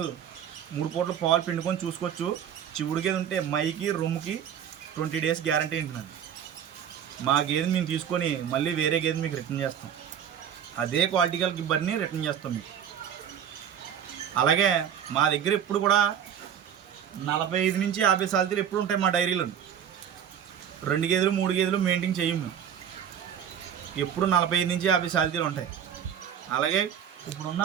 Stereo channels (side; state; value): left; quieter; 8.9 dB